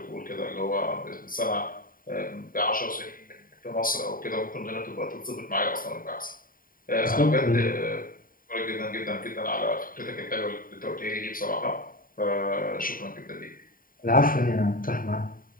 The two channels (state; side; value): late; right; 0.41 ms